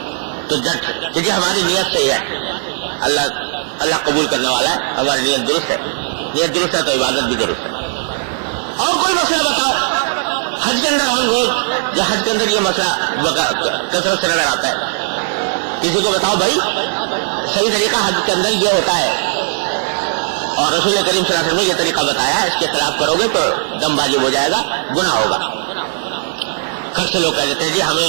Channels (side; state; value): left; silent; digital silence